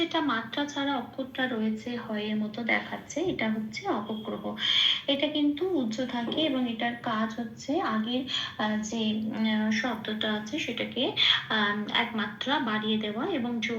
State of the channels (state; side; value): identical; both; correlation 1.00